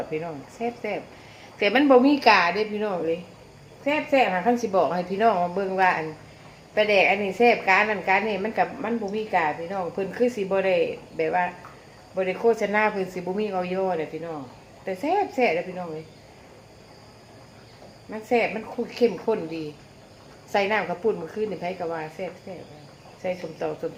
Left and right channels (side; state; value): both; identical; correlation 1.00